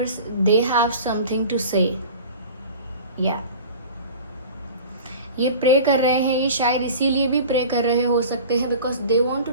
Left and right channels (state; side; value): inverted; both; correlation -0.39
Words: they have something to say. या ये प्रे कर रहे हैं, ये शायद इसीलिए भी प्रे कर रहे हो सकते हैं because they want to